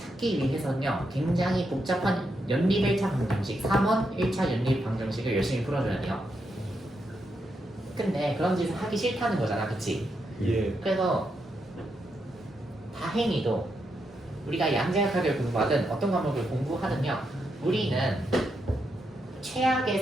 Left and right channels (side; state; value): both; normal; correlation 0.82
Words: 위해서는요 굉장히 복잡한 연립 1차 방정식 3원 1차 연립 방정식을 열심히 풀어줘야 돼요. 근데 그런 짓을 하기 싫다는 거잖아. 그치? 예. 그래서 다행히도 우리가 양자역학을 공부하든 어떤 과목을 공부하든요 우리는